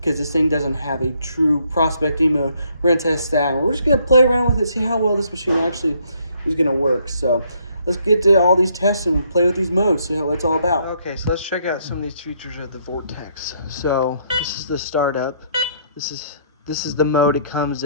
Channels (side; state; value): both; inverted; correlation -0.69